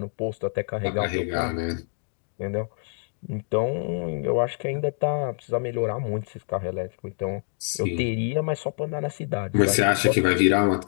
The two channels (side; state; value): right; silent; digital silence